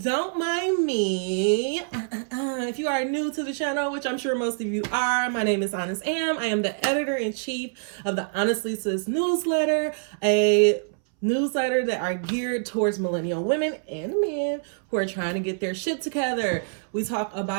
mind me. If you are new to the channel, which I'm sure most of you are, my name is Honest Am. I am the editor-in-chief of the Honestly Sis newsletter, a newsletter that are geared towards millennial women and men who are trying to get their shit together. We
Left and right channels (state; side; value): silent; left; 61 dB below the other